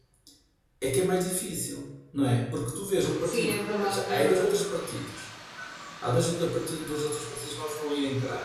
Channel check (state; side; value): identical; both; correlation 1.00